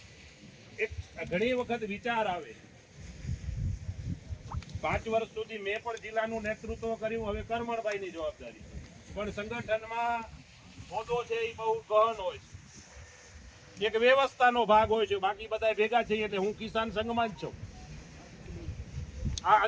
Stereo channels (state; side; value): identical; both; correlation 1.00